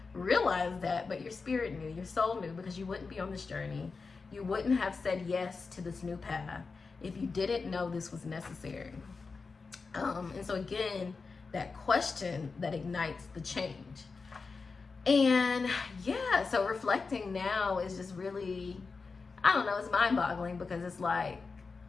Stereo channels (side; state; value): right; quieter; 4.5 dB